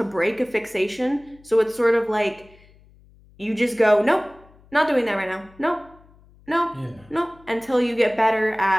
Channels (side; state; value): left; noise; hum, 27 dB below the sound